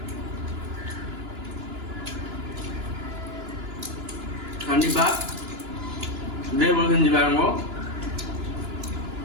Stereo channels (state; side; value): late; left; 2.9 ms